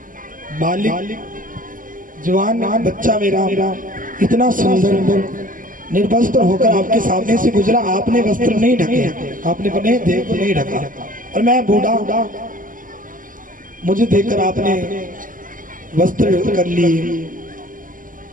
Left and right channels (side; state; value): left; late; 0.39 ms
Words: बालिक जवान बच्चा मेरा इतना सुंदर निर्वस्त्र होकर आपके सामने से गुजरा। आपने वस्त्र नहीं ढके, आपने अपने देह को नहीं ढका, और मैं बूढ़ा, मुझे देखकर आपने वस्त्र कर लिए।